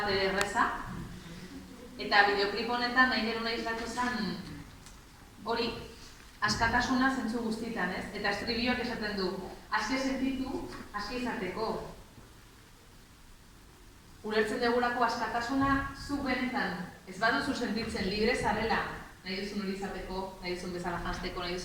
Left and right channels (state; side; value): identical; both; correlation 1.00